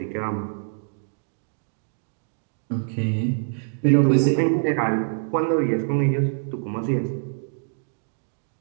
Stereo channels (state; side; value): silent; left; digital silence